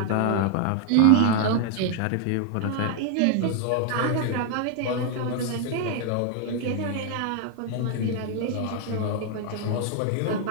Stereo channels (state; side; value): different; both; correlation 0.00